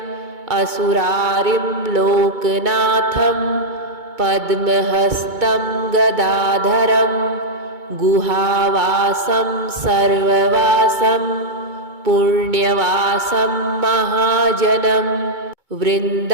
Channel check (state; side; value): late; left; 2.2 ms